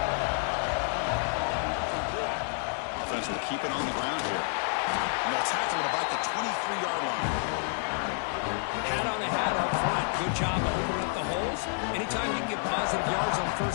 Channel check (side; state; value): right; silent; 58 dB below the other